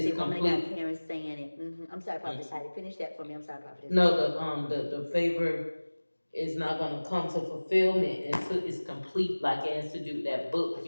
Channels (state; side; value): inverted; both; correlation -1.00